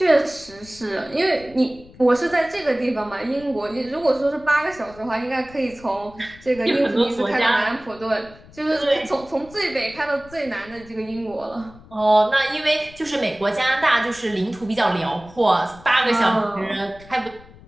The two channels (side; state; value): left; noise; rumble, 22 dB below the sound